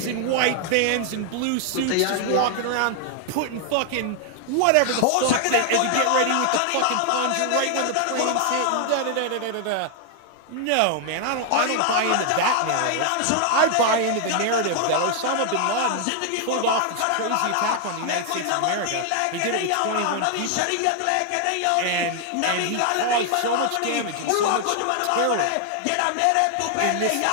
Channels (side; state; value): both; different; correlation 0.00